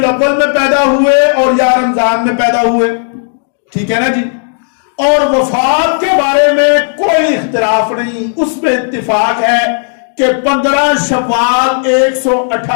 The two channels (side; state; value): right; silent; digital silence